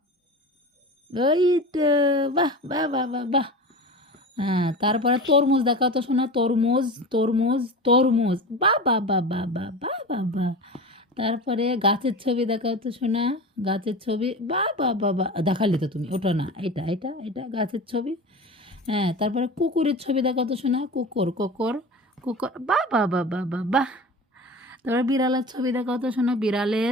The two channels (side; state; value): both; normal; correlation 0.31